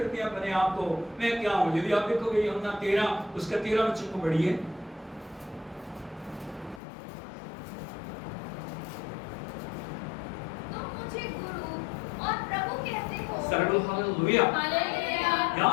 हैं अपने आप को, मैं क्या हूं। यदि आप देखोगे यूहन्ना 13 उसका 13 वचन को पढ़िए। तुम मुझे गुरु और प्रभु कहते हो। सर्वल हालेलुया। हालेलुया।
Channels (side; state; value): right; drops out; at 6.8 s